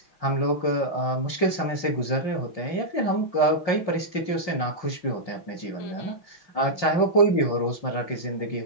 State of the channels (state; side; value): late; right; 5.6 ms